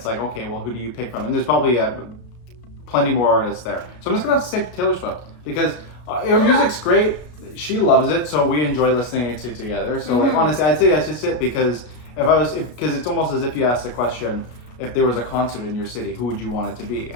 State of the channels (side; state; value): right; late; 33 ms